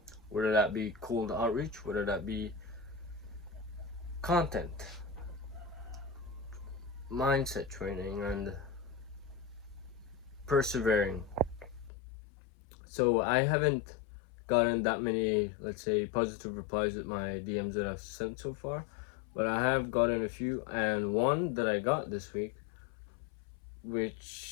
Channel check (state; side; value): drops out; right; at 11.9 s